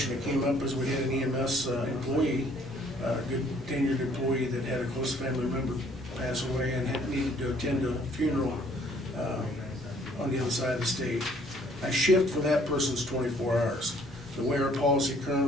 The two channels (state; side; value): normal; both; correlation 0.60